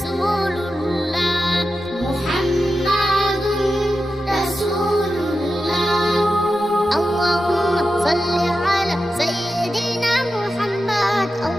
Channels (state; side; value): normal; both; correlation 0.91